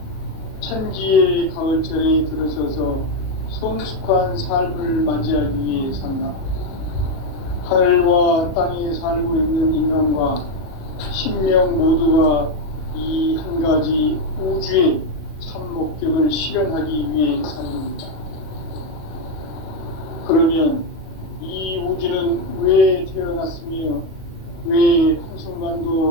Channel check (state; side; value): late; right; 37 ms